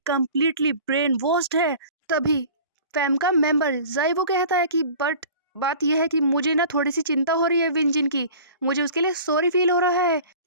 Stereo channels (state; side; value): inverted; both; correlation -0.43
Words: कंप्लीटली ब्रेन वॉश्ड है। तभी फैम का मेंबर जाइवो कहता है कि बट बात यह है कि मुझे ना थोड़ी सी चिंता हो रही है विंजिन की, मुझे उसके लिए सॉरी फील हो रहा है।